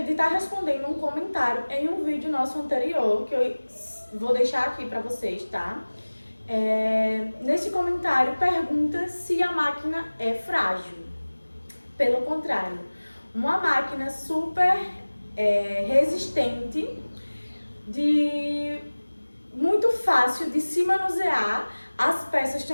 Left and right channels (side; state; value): both; inverted; correlation -1.00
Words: de estar respondendo um comentário em um vídeo nosso anterior que eu vou deixar aqui para vocês, tá? Nesse comentário pergunta se a máquina é frágil. Pelo contrário, uma máquina super resistente, muito fácil de se manusear, as peças